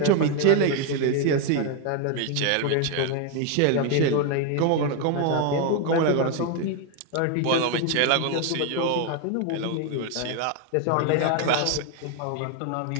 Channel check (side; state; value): both; different; correlation 0.01